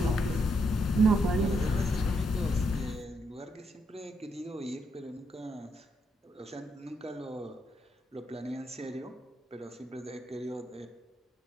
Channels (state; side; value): normal; both; correlation 0.78